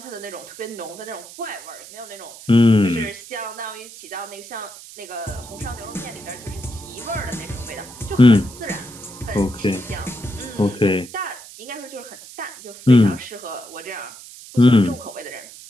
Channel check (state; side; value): noise; right; hiss, 16 dB below the sound